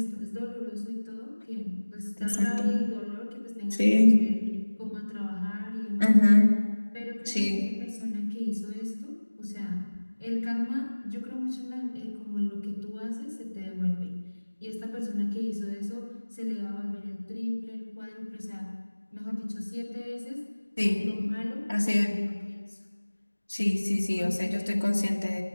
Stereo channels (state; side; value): inverted; both; correlation -1.00